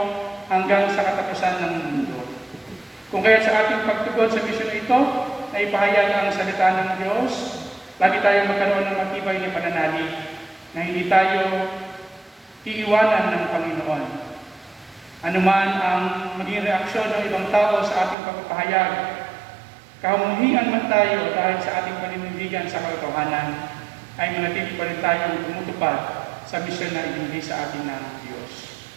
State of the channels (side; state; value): left; drops out; at 18.2 s